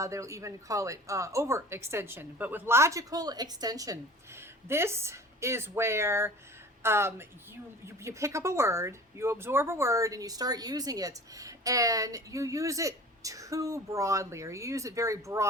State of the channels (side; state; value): both; normal; correlation 0.42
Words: they'll even call it overextension. But with logical extension, this is where you pick up a word, you absorb a word, and you start using it, and you use it too broadly, or you use it very